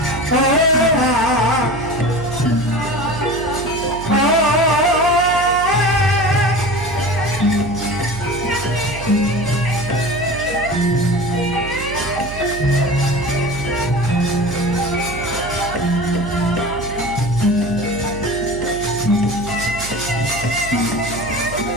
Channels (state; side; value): noise; right; hum, 11 dB below the sound